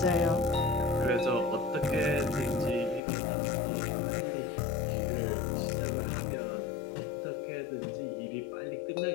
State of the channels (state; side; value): drops out; right; at 3.0 s